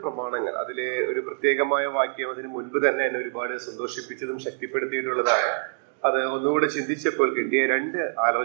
പ്രമാണങ്ങൾ, അതിലെ ഒരു പ്രത്യേകമായ വാക്യം അതിന് മുൻപ് തന്നെ എന്നെ ഒരുപാട് സന്തോഷിപ്പിച്ചതും ശക്തിപ്പെടുത്തിയിട്ടുള്ളതാണ്. അത് ഒന്നുകൂടെ ചിന്തിച്ചപ്പോൾ കിട്ടിയ രണ്ട്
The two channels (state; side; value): silent; left; digital silence